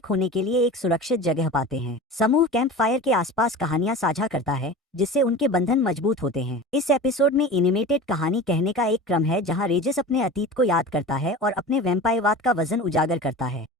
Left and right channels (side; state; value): both; normal; correlation 0.34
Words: होने के लिए एक सुरक्षित जगह पाते हैं। समूह कैंप फायर के आसपास कहानियां साझा करता है, जिससे उनके बंधन मजबूत होते हैं। इस एपिसोड में एनिमेटेड कहानी कहने का एक क्रम है, जहां रेजिस अपने अतीत को याद करता है और अपने वैम्पायरवाद का वजन उजागर करता है।